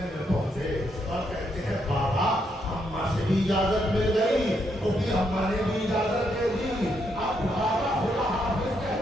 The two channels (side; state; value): both; normal; correlation 0.77